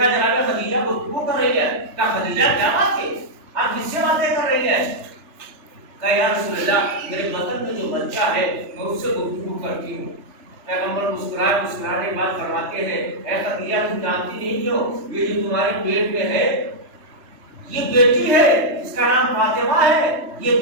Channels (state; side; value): late; left; 3.3 ms